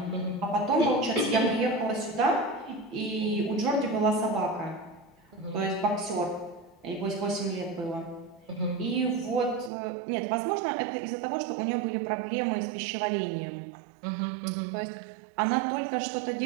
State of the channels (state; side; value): drops out; left; at 9.7 s